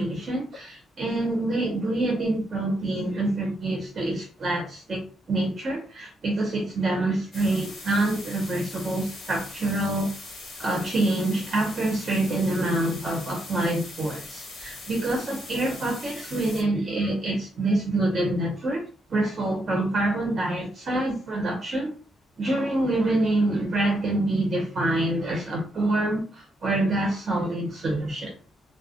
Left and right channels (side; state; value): both; normal; correlation 0.78